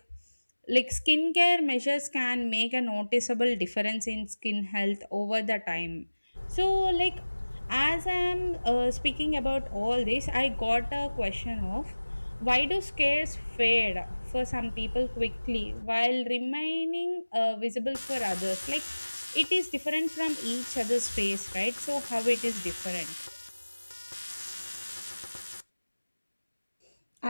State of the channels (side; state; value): both; inverted; correlation -1.00